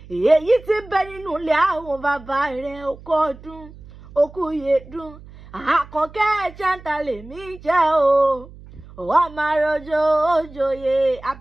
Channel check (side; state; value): right; noise; hum, 19 dB below the sound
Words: Èyí tí ń bẹ nínú ilé àwọn bàbá rẹ̀ okú ọdún, okú yèdún. Àkànkẹ́ ẹ̀jẹ̀ lèmi jẹ́ o. Wọ́n máa rọjò òjòyè.